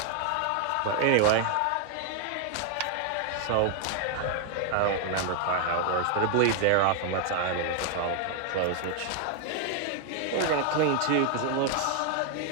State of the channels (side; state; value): both; different; correlation 0.00